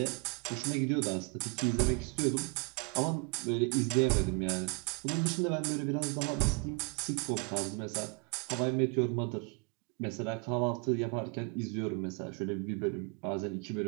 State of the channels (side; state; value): left; quieter; 32.7 dB